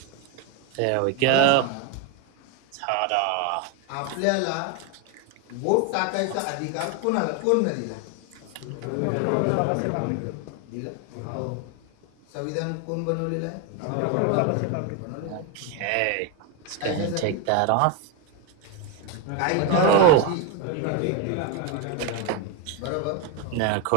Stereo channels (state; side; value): different; both; correlation 0.01